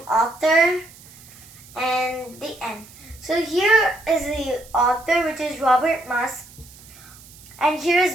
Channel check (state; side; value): noise; right; hiss, 22 dB below the sound